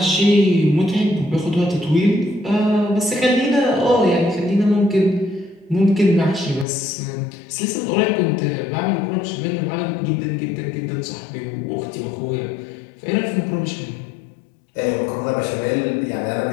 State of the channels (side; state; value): right; drops out; at 6.7 s